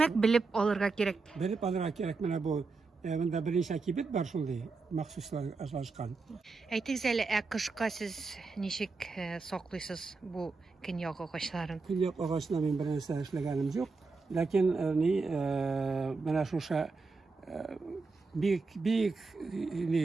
белеп алырга кирәк. Белеп алырга кирәк. Менә бу монда беренче кибет бар шундый, махсуслар ажлашкан. Әйтегез әле, кышка сез ничек саклыйсыз бу көньяк агачларын? Көньяк агачына мин бер нәрсә эшләгәнем юк. Ләкин менә шуша бик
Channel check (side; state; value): left; quieter; 4.2 dB